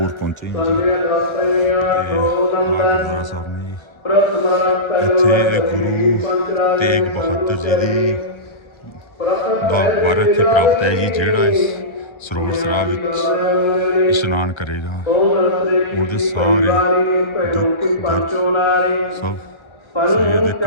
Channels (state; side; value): late; right; 1.4 ms